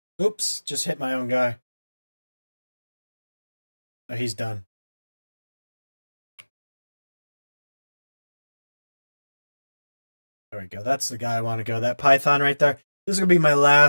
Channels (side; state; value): both; inverted; correlation -1.00